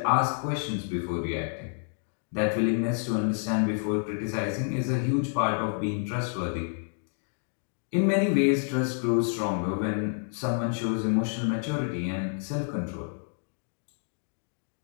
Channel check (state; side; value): silent; right; 59 dB below the other